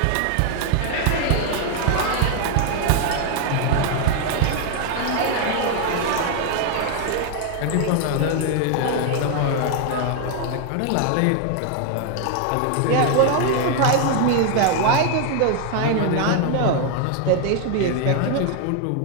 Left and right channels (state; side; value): different; both; correlation 0.00